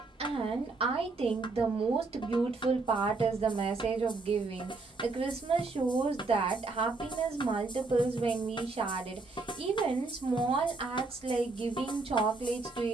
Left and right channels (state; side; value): quieter; left; 3.7 dB